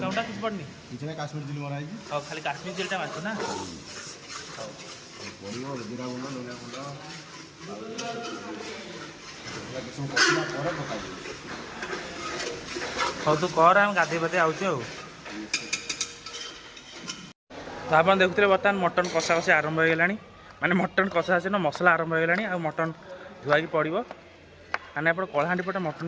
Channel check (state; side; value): identical; both; correlation 1.00